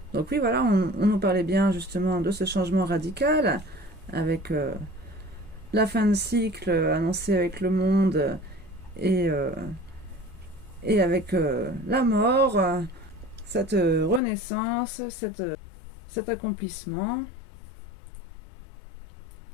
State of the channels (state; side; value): drops out; right; at 14.2 s